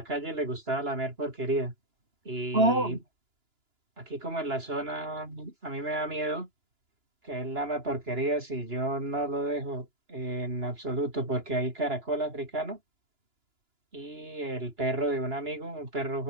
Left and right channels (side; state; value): left; late; 2.9 ms